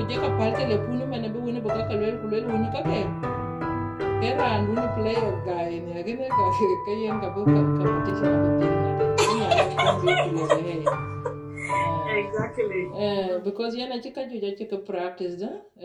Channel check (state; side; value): identical; both; correlation 1.00